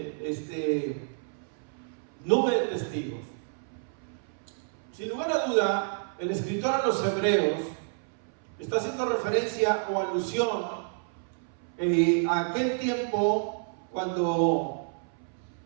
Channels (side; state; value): left; silent; 58 dB below the other